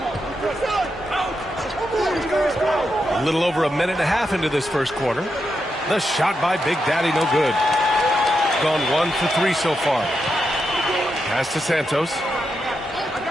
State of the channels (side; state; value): both; normal; correlation 0.85